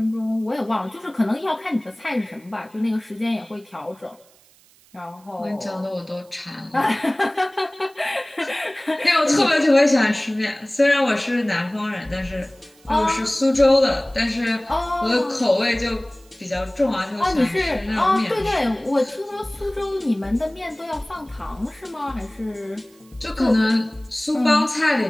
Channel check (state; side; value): noise; right; hiss, 29 dB below the sound